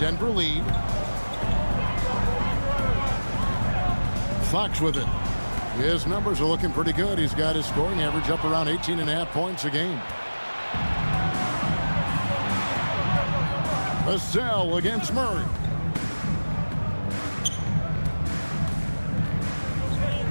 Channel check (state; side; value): inverted; both; correlation -1.00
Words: lead. Fox with it. His numbers are looking pretty good. He's got his scoring average up around 18.5 points a game. Vassell against Murray.